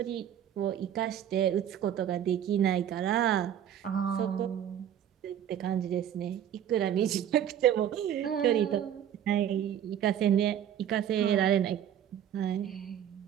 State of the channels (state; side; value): quieter; left; 10.0 dB